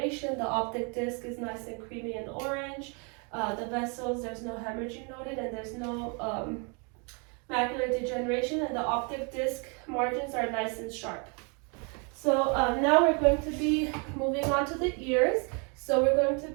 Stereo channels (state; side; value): quieter; left; 34.9 dB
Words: The optic disc is nice and creamy and orange. The vessels, there's no hemorrhaging noted, and there's no macular degeneration, and the optic disc margins are nice and sharp. So now we're going to be moving on to the ears. So we're going to